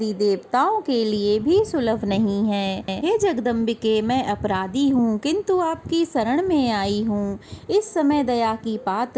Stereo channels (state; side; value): identical; both; correlation 1.00